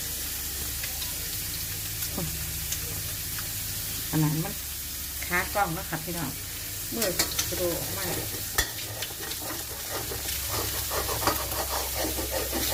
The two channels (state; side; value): identical; both; correlation 1.00